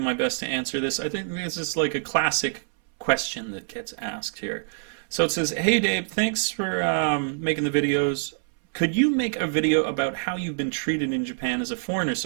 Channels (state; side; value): silent; left; 61 dB below the other